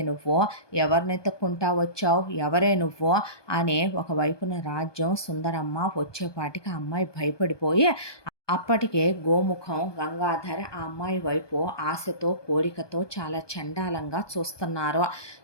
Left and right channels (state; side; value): late; right; 1.2 ms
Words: నువ్వు, ఎవరిని ఎత్తుక్కుంటా వచ్చావు, ఎవరే నువ్వు" అని ఒకవైపున రాజ్యం సుందరమ్మ వచ్చేపాటికి ఆ అమ్మాయి భయపడిపోయి, అప్పటికే గోముఖం గంగాధర్ ఆ అమ్మాయి వైపు ఆశతో, కోరికతో చాలా చండాలంగా చూస్తున్నారు.